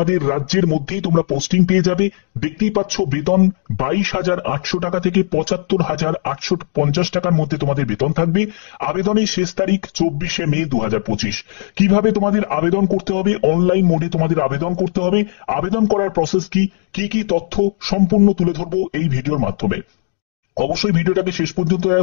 রাজ্যের মধ্যেই তোমরা পোস্টিং পেয়ে যাবে। দেখতেই পাচ্ছ বেতন 22,800 টাকা থেকে 75,850 টাকার মধ্যে তোমাদের বেতন থাকবে। আবেদনের শেষ তারিখ 24শে মে 2025। কিভাবে তোমাদের আবেদন করতে হবে? অনলাইন মোডে তোমাদের আবেদন করতে হবে। আবেদন করার প্রসেস কি কি তথ্য সম্পূর্ণ তুলে ধরবো এই ভিডিওর মাধ্যমে। অবশ্যই ভিডিওটাকে শেষ পর্যন্ত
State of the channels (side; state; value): right; silent; 57 dB below the other